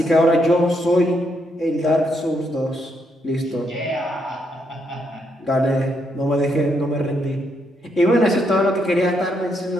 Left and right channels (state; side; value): normal; both; correlation 0.77